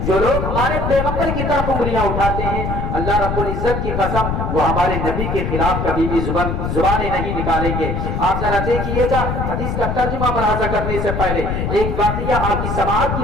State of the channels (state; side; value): noise; left; rumble, 2 dB below the sound